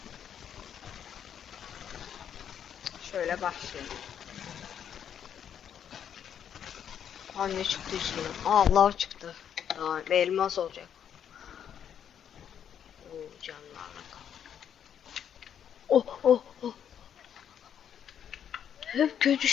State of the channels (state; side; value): quieter; right; 8.9 dB